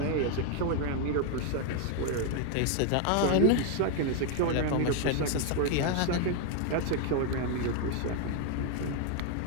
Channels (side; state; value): both; different; correlation 0.01